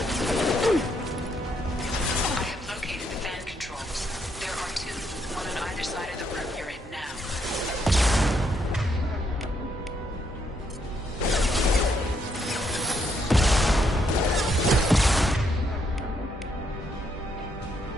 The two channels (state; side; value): normal; both; correlation 0.74